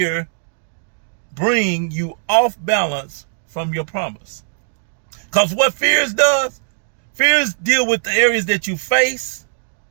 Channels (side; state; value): left; silent; digital silence